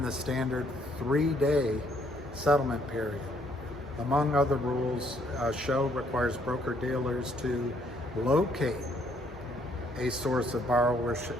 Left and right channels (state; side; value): normal; both; correlation 0.68